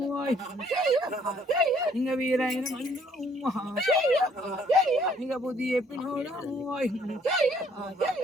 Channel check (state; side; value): normal; both; correlation 0.63